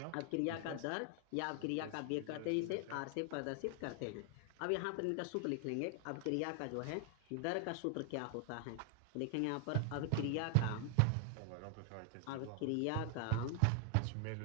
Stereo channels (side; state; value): both; different; correlation 0.00